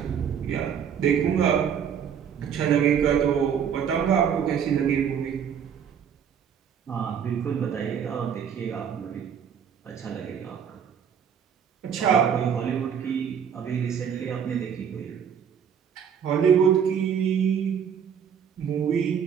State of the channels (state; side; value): quieter; left; 7.9 dB